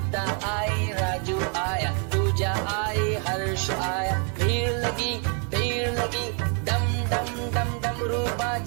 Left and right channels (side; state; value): left; quieter; 39.4 dB